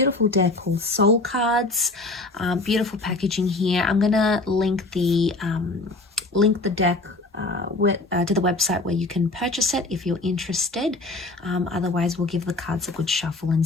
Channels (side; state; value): right; quieter; 3.1 dB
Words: deck called Soul Cards. Beautiful packaging here. I'm gonna link the deck to the website where you can purchase it if you're interested. Otherwise, we'll give the cards a good shuffle and